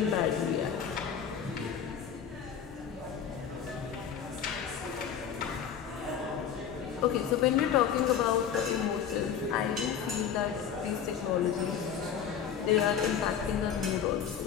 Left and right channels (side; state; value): right; quieter; 8.1 dB